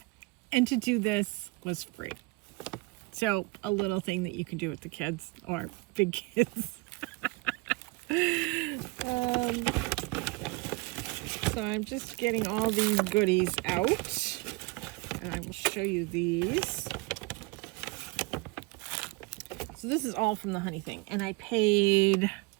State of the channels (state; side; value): quieter; left; 25.4 dB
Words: And to do this was free. So a little thing that you can do with the kids or big kids. So I'm just getting all these goodies out. And I will show you these. So this is all from the honey thing, and I paid